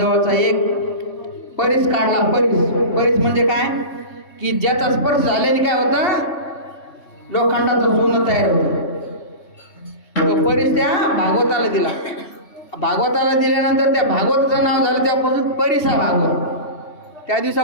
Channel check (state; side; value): late; right; 3.1 ms